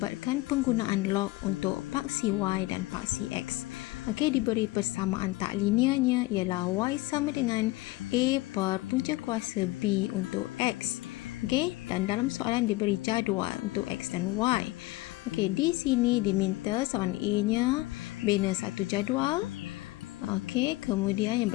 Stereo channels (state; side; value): quieter; right; 20.0 dB